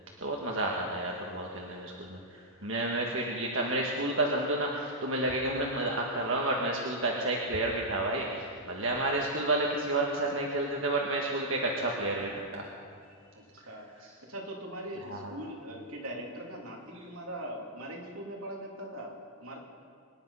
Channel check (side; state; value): both; normal; correlation -0.09